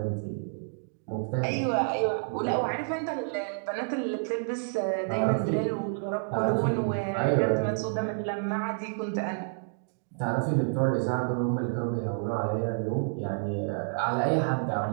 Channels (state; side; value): silent; left; digital silence